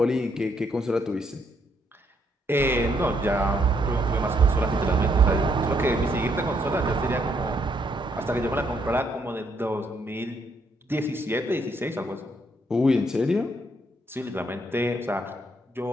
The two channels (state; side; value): normal; both; correlation 0.73